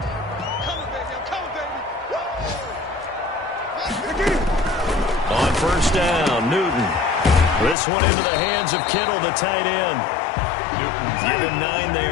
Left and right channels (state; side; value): drops out; right; at 7.8 s